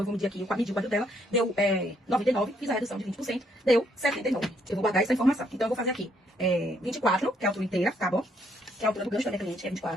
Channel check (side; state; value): both; normal; correlation 0.71